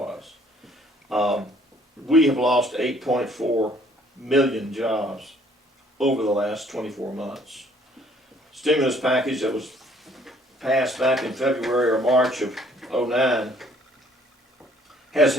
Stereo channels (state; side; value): normal; both; correlation 0.61